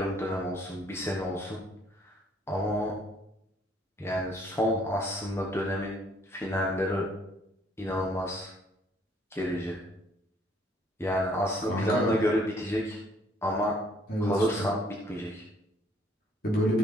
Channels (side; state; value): both; normal; correlation 0.63